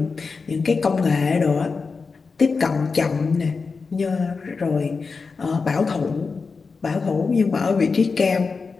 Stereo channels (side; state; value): right; quieter; 4.7 dB